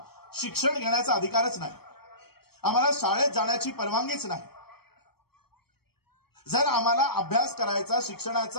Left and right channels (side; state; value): right; late; 0.96 ms